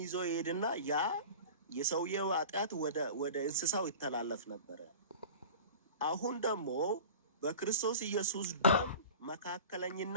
ይዞ ይሄድና ያ የሰውየው ኃጢአት ወደ እንስሳው ይተላለፍ ነበረ። አሁን ደግሞ በክርስቶስ ኢየሱስ ደም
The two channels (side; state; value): both; inverted; correlation -0.38